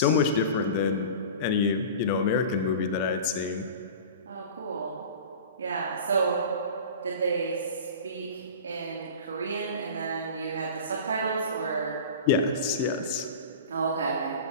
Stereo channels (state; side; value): inverted; both; correlation -0.35